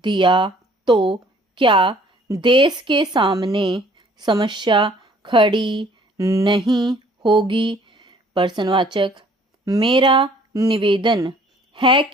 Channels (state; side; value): normal; both; correlation 0.57